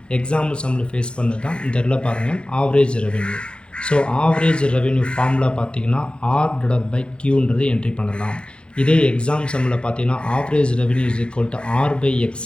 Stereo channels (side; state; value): right; late; 0.055 ms